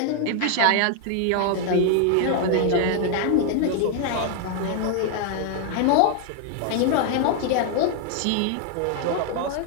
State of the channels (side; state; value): both; different; correlation 0.00